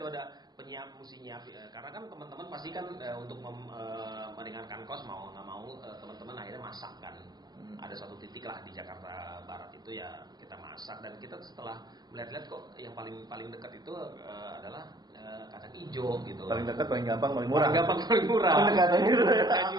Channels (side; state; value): left; late; 0.19 ms